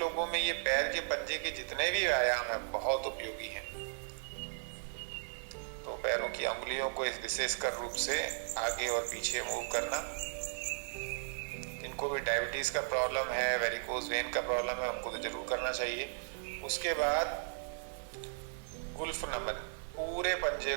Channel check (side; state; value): left; silent; digital silence